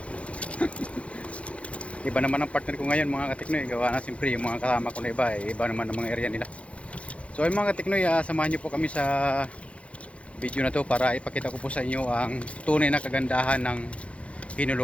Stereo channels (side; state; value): right; late; 0.062 ms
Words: Iba naman ang partner ko ngayon mga kateknoy. Gawa na siyempre yung mga kasama ko na iba. Iba naman ang mga area nila. So ay mga kateknoy, samahan nyo po kami sa video na to para ipakita ko po sa inyo ang tunay na kagandahan ng